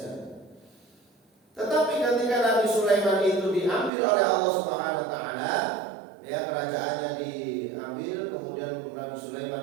Tetapi ketika Nabi Sulaiman itu diambil oleh Allah Subhanahu wa taala, ya, kerajaannya diambil, kemudian Nabi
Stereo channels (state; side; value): drops out; left; at 3.9 s